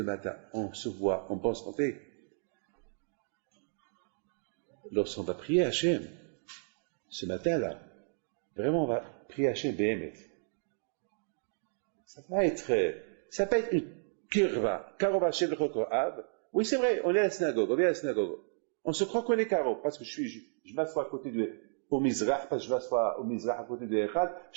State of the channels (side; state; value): left; silent; digital silence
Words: matin, on se voit en bonne santé. Lorsqu'on va prier Hachem, ce matin-là, vraiment on va prier Hachem Behemet. Ça va être une kirva, Karov Hachem le Chokorav. Oui, c'est vrai, on est à la synagogue, on vient à la synagogue. On se croit qu'on est Karov, parce que je m'assois à côté au Mizrach, parce que je m'assois au Mizrach à côté de Echad,